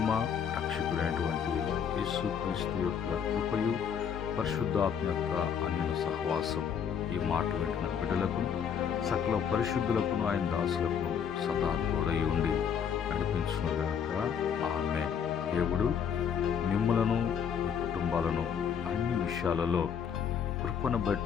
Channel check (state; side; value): quieter; right; 7.7 dB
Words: రక్షకుడైనటువంటి యేసుక్రీస్తు యొక్క కృపయు, పరిశుద్ధాత్మ యొక్క అన్యోన్య సహవాసం ఈ మాట వింటున్న బిడ్డలకు, సకల పరిశుద్ధులకు, ఆయన దాసులకు సదా తోడై ఉండి నడిపించునుగాక. ఆమేన్. దేవుడు మిమ్మలను, మీ కుటుంబాలను అన్ని విషయాలలో కృపను